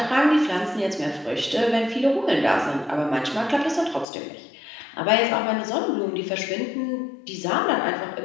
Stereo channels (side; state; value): right; drops out; at 4.0 s